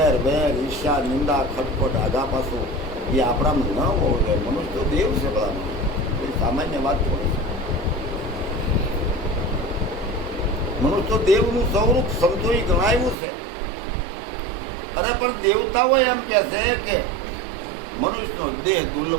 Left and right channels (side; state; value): left; drops out; at 13.2 s